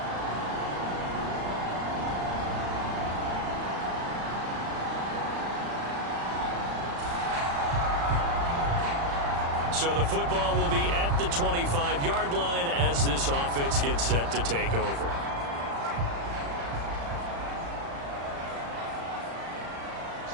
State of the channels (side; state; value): left; late; 35 ms